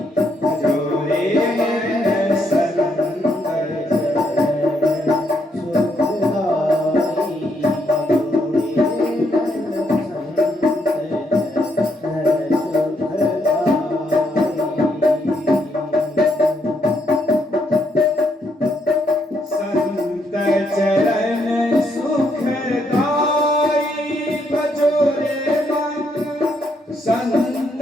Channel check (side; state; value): both; normal; correlation 0.75